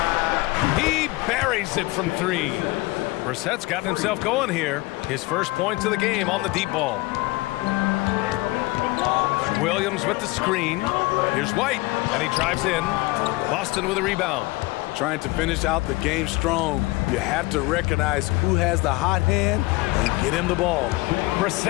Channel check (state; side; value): quieter; right; 21.9 dB